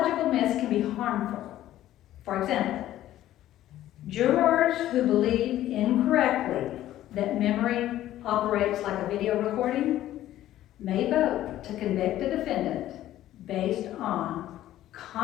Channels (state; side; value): quieter; right; 13.5 dB